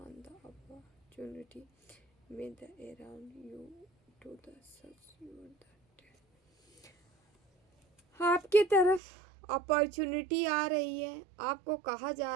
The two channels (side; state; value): left; drops out; at 9.0 s